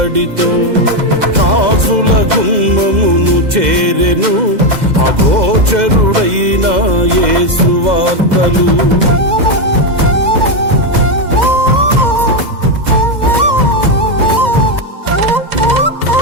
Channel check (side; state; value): left; late; 2.0 ms